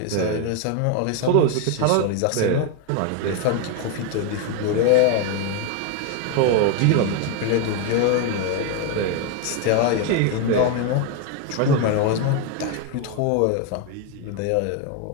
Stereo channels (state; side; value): different; both; correlation 0.01